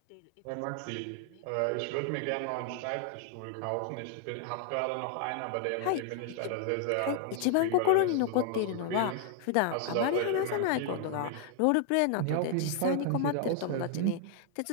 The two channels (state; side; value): different; both; correlation 0.00